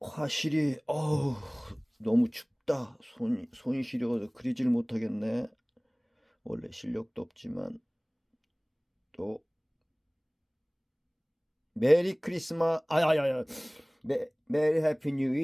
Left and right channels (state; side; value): identical; both; correlation 1.00